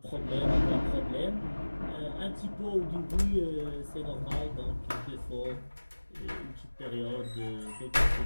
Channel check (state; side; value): inverted; both; correlation -1.00